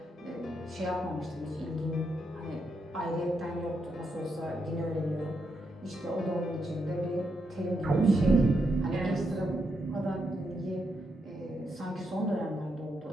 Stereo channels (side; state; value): both; normal; correlation 0.81